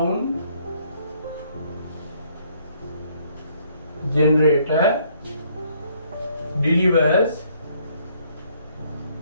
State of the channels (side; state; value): both; inverted; correlation -0.66